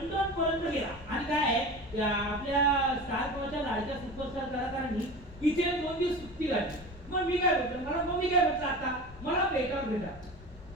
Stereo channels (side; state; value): left; noise; rumble, 17 dB below the sound